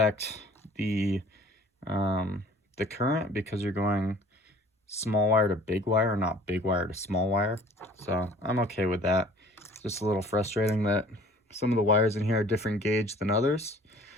the current, because you're going small wire to big wire, not big wire to small wire. So I'm okay with that. It's just a little frustrating that some of the wires in here are different gauge than others,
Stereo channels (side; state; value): both; normal; correlation 0.50